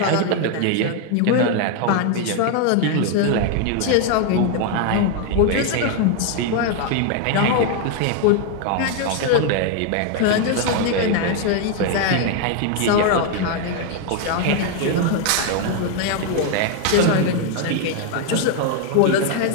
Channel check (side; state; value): both; different; correlation 0.01